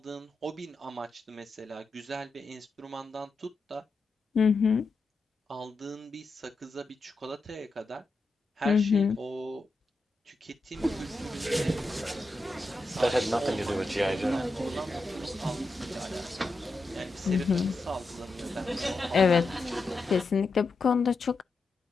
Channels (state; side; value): quieter; right; 3.1 dB